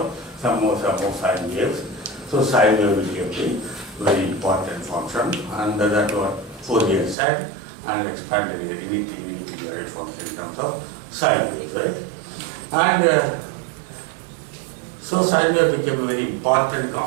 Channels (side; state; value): left; drops out; at 7.2 s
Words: some more sine waves. So sine wave became a very important function, and that's what Fourier said, and expanded any periodic function in terms of sine waves, right? And so sine wave became a very important